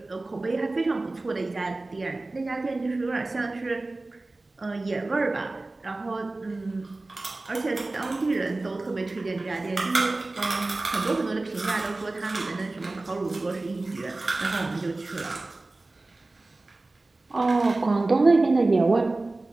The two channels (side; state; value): left; quieter; 3.1 dB